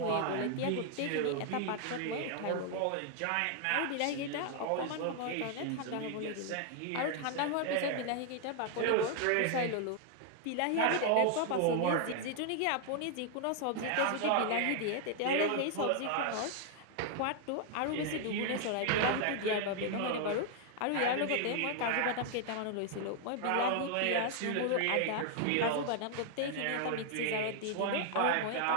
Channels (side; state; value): both; different; correlation 0.00